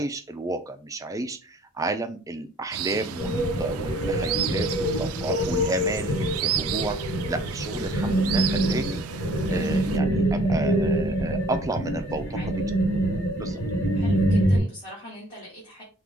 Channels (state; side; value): normal; both; correlation 0.56